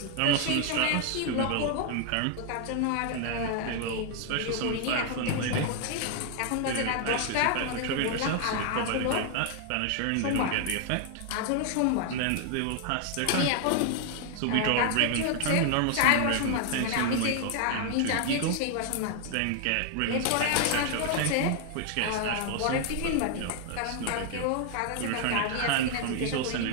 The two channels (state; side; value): different; both; correlation 0.00